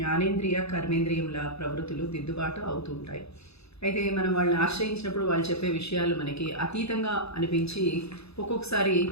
కర్మేంద్రియంల ప్రవృత్తులు దిద్దుబాటు అవుతూ ఉంటాయి. అయితే మనం వాళ్ళని ఆశ్రయించినప్పుడు వాళ్ళు చెప్పే విషయాలు మనకి అతీతంగా అనిపించి ఒక్కొక్కసారి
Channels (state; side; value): late; right; 0.79 ms